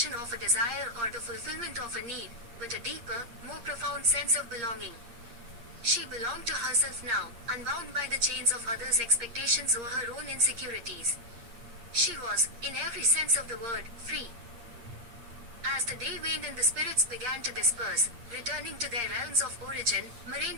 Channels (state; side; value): late; left; 8.6 ms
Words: of a desire or the fulfillment of a need, but a deeper, more profound sense of belonging. She belonged to herself now, unbound by the chains of others' expectations or her own insecurities. She was, in every sense of the word, free. As the day waned and the spirits began to disperse, returning to their realms of origin,